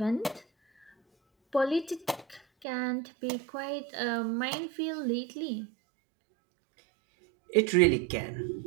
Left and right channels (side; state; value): left; drops out; at 2.7 s